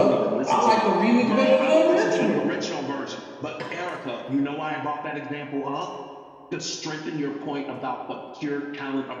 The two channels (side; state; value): both; identical; correlation 1.00